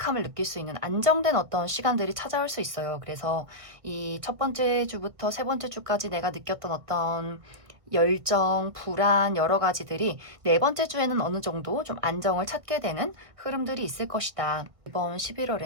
느낄 수 있는 안정된 어떤 시간들이 찾아올 수 있어요. 그래서 이 첫 번째 주부터 세 번째 주까지 내가 느꼈던 어떤 열정, 불안 여러 가지들이 네 번째 주에는 어느 정도 좀 안정을 찾게 되는 흐름들이 있을 것이다. 이번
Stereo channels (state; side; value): late; left; 1.6 ms